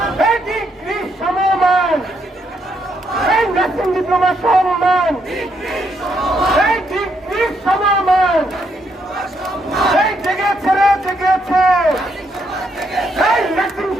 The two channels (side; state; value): both; normal; correlation 0.76